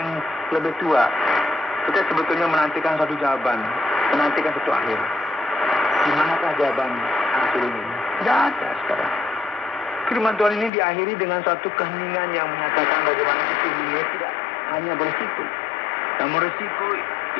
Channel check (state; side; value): drops out; right; at 10.7 s